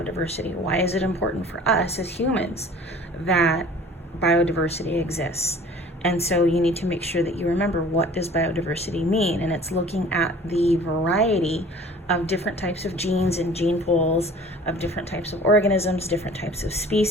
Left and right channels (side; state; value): both; normal; correlation 0.47